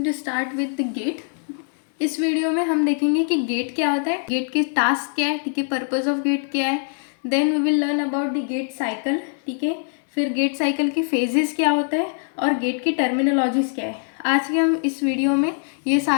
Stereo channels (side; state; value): right; silent; 57 dB below the other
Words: to start with the gait. इस video में हम देखेंगे कि गेट क्या होता है, गेट के टास्क क्या है, ठीक है, पर्पस ऑफ गेट क्या है। Then we will learn about the gait cycle, ठीक है। फिर गेट साइकिल के फेजेस क्या होता है और गेट की टर्मिनोलॉजीज क्या है। आज के हम इस वीडियो में ये